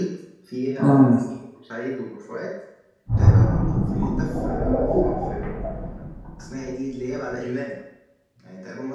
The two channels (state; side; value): identical; both; correlation 1.00